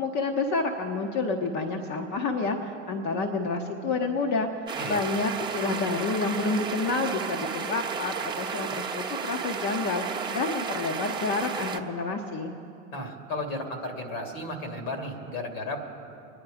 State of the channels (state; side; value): normal; both; correlation 0.06